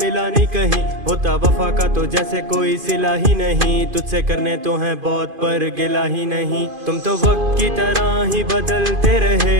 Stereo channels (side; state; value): left; late; 2.5 ms